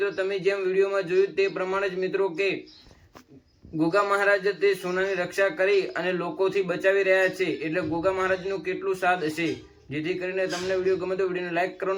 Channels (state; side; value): identical; both; correlation 1.00